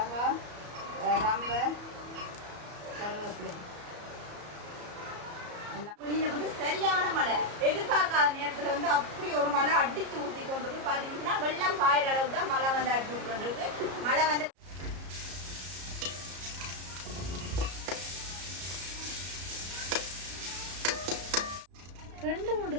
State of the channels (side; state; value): left; late; 34 ms